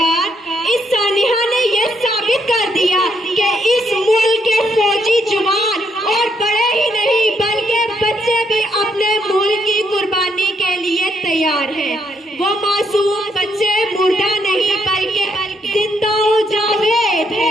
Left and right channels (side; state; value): both; normal; correlation 0.75